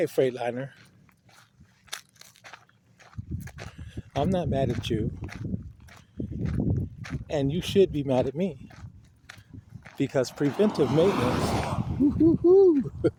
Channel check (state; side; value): identical; both; correlation 1.00